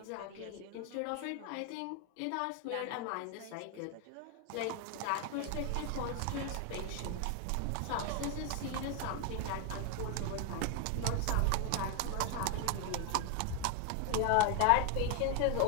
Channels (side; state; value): both; different; correlation 0.01